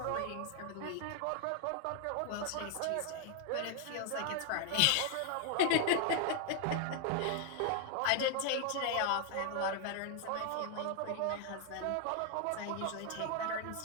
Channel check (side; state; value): both; different; correlation 0.00